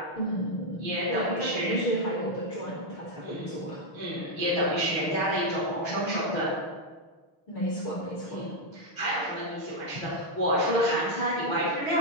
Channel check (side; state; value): right; late; 6.4 ms